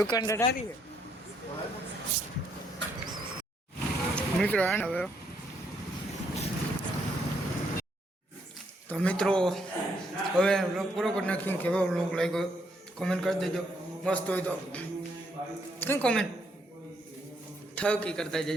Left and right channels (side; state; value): both; normal; correlation 0.73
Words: ઢારી મિત્રો આને હવે તો મિત્રો હવે વ્લોગ પૂરો કરી નાખ્યું. કેવો વ્લોગ લાગ્યો કોમેન્ટ કરી દેજો. મસ્ત હોય તો કઈ કોમેન્ટ થકી કરતા